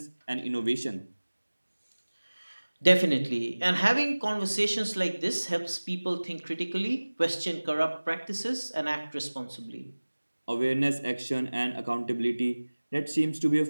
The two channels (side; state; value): both; inverted; correlation -1.00